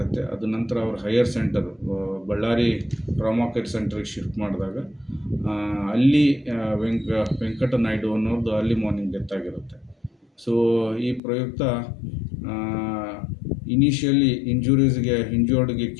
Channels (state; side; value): drops out; right; at 11.2 s